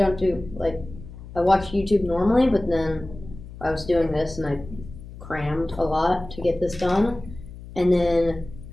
do I watch YouTube normally, but then I was doing this and I crammed a lot to get this done, and then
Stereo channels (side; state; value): left; noise; hum, 15 dB below the sound